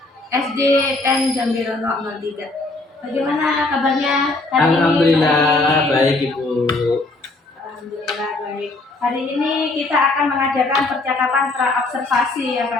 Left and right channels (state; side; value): quieter; right; 3.1 dB